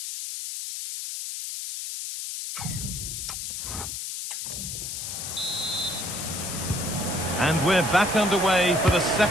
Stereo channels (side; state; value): left; noise; hiss, 5 dB below the sound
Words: And we're back underway for the